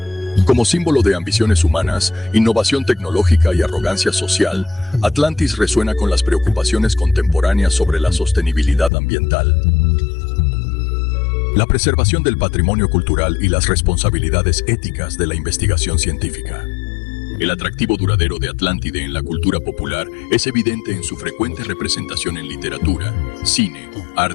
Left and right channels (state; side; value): drops out; right; at 8.9 s